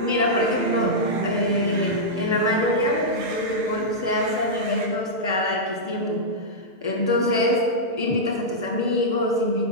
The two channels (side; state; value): left; late; 6.7 ms